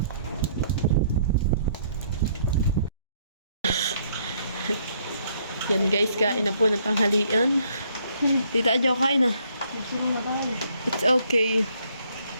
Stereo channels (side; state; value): both; inverted; correlation -0.67